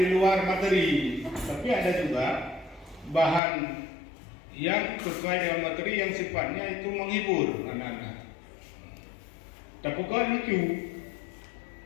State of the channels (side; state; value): right; drops out; at 3.4 s